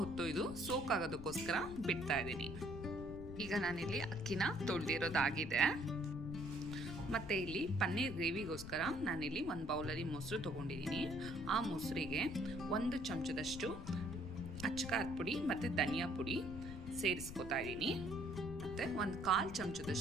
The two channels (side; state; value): left; noise; rumble, 10 dB below the sound